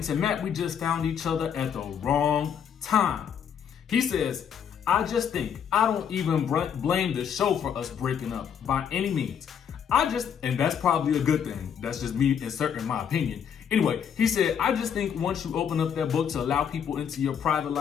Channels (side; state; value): right; quieter; 8.0 dB